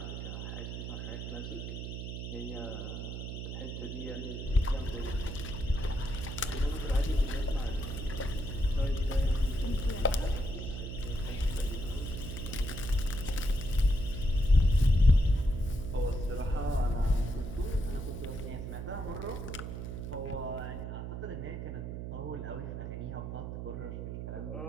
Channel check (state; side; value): noise; right; hum, 6 dB below the sound